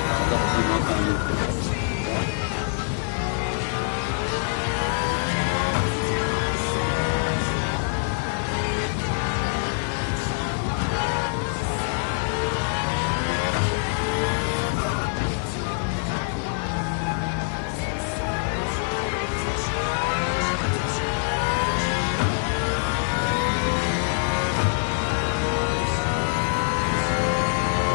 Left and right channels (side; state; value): right; silent; 62 dB below the other